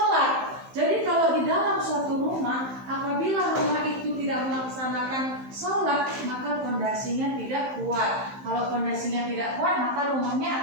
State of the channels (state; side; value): late; left; 15 ms